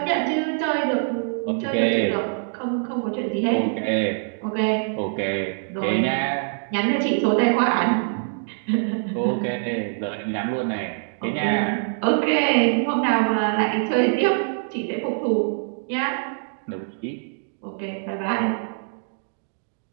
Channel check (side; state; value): left; silent; digital silence